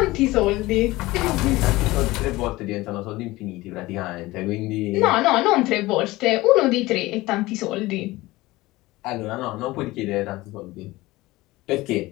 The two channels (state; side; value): quieter; right; 19.4 dB